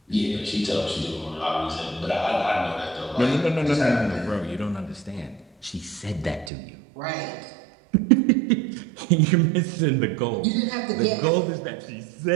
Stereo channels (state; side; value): drops out; left; at 6.5 s